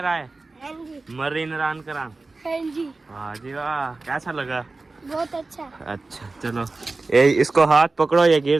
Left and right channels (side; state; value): left; quieter; 3.5 dB